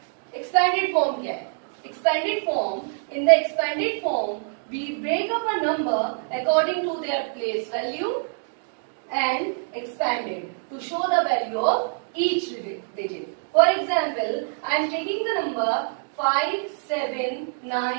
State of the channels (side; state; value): left; silent; digital silence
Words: Expanded form क्या है? Expanded form, in the expanded form, we break up a number according to their place value and expand it to show the value of each digit. For example, I am taking the number